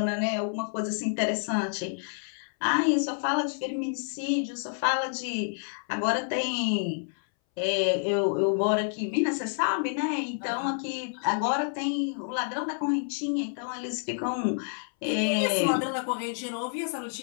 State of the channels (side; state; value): right; silent; 59 dB below the other